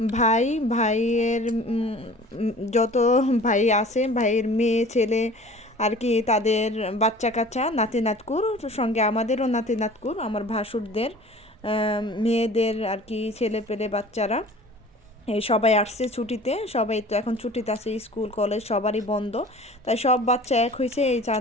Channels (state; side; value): normal; both; correlation 0.45